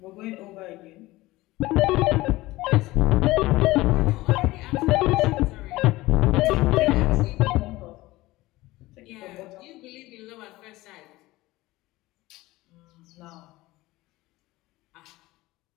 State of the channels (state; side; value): quieter; right; 19.0 dB